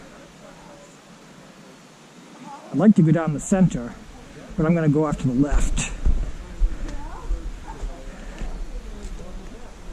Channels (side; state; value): both; identical; correlation 1.00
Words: like to go down the center, but I'm going to go off to the left.